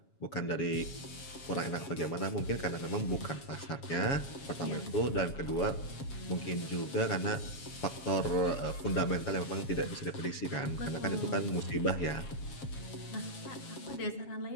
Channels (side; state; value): right; late; 7.3 ms